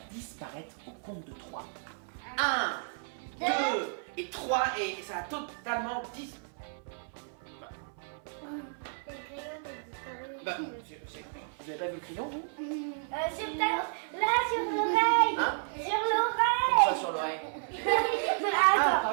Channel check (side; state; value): left; silent; 56 dB below the other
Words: disparaître au compte de 3. 1, 2 et 3 et ça va totalement disparaître. Bah, vous avez pas vu le crayon, vous? Sur là, sur l'oreille. Hein? Sur l'oreille. Comme ça sur l'oreille. Ah,